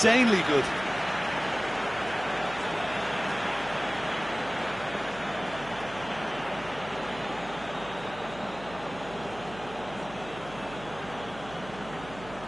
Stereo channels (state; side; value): noise; right; hum, 16 dB below the sound